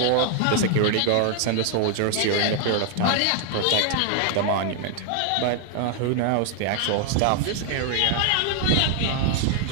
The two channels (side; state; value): both; different; correlation 0.00